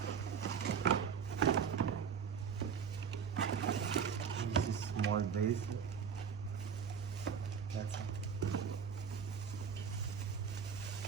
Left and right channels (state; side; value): quieter; left; 7.0 dB